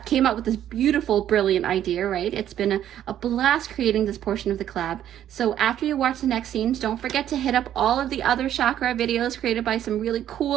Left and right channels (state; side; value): quieter; left; 11.1 dB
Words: came up with this beautiful, brilliant idea, right? It's been a blast creating this portion of the collab. So after you watch the next scenes, don't forget to hit up all of the other chakra videos created by some really